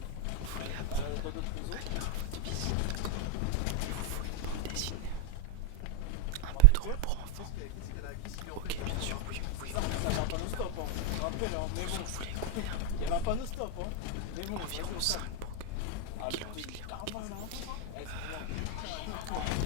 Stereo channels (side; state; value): both; different; correlation 0.00